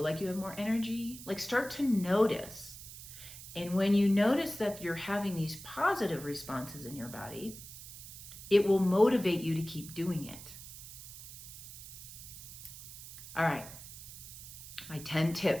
like you have more energy? Like, start to notice. And when you notice that you're having these positive responses in your body, it will motivate you to keep doing it. All right, my 10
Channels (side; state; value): right; noise; hiss, 13 dB below the sound